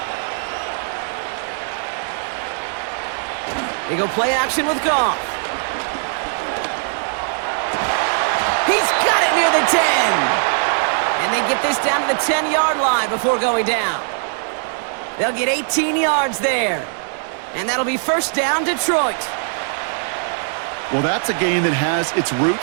They go play action with Goff. He's got it near the 10. And they get this down to the 10-yard line before going down. They'll get 18 yards there. And that'll be first down, Detroit. Well, that's a game that has its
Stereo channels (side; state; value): left; silent; 64 dB below the other